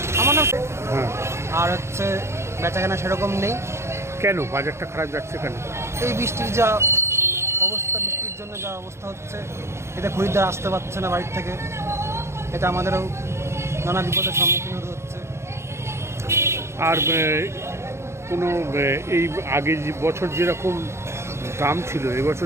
আমার নাম। হ্যাঁ, আর বেচাকেনা সেরকম নেই। কেন বাজারটা খারাপ যাচ্ছে কেন? এই বৃষ্টির যা অবস্থা, বৃষ্টির জন্য যা অবস্থা হচ্ছে, এতে খরিদ্দার আসতে পারছে না বাড়ির থেকে। এটা আমাদেরও নানা বিপদের সম্মুখীন হতে হচ্ছে। আর কোনো এই আগে যে বছর যেরকম দাম ছিল,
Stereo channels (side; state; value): left; late; 0.13 ms